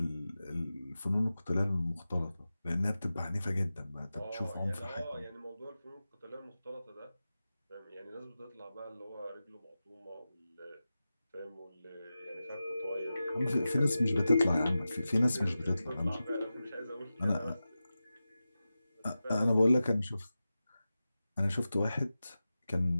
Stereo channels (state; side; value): inverted; both; correlation -0.94